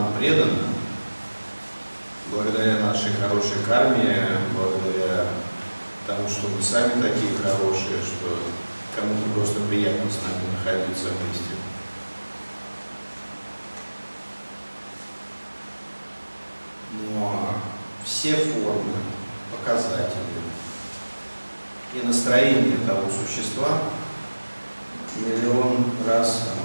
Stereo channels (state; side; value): inverted; both; correlation -1.00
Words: предано, благодаря нашей хорошей карме, благодаря тому, что мы сами такие хорошие, что кому-то просто приятно с нами находиться вместе. Но все формы, показатели и настроение того существа миллион раз, а